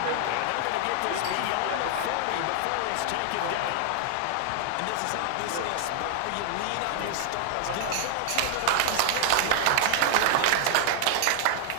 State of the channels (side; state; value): both; different; correlation 0.00